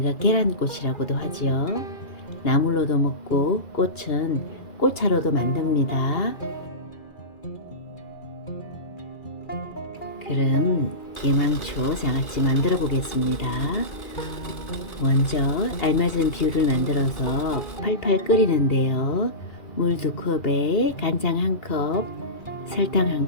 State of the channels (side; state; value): right; late; 2.4 ms